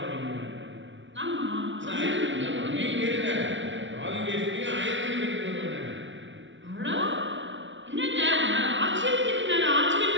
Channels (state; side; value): late; left; 0.55 ms